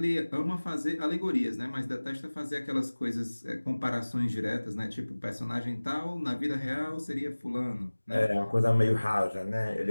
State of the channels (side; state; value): both; inverted; correlation -1.00